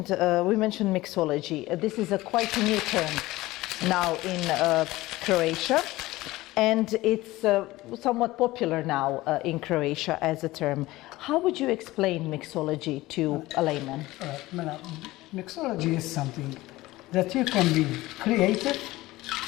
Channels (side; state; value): right; quieter; 18.4 dB